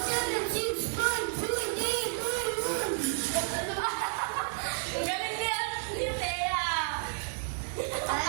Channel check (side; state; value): left; silent; 57 dB below the other